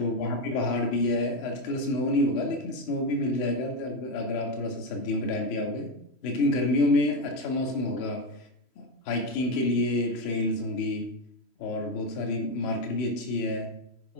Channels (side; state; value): right; late; 3.1 ms